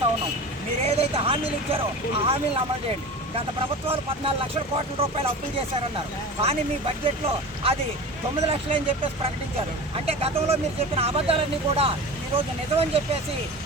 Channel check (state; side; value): normal; both; correlation 0.33